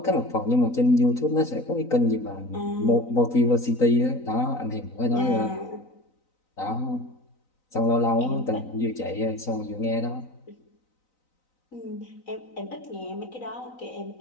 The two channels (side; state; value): right; late; 3.9 ms